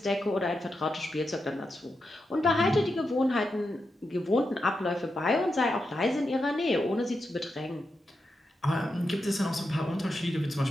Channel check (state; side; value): normal; both; correlation 0.87